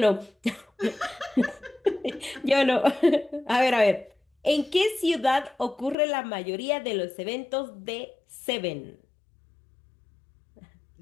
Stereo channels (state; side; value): drops out; right; at 6.0 s